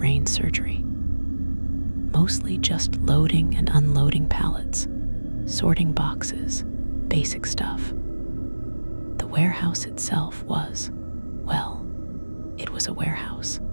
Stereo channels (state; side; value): inverted; both; correlation -1.00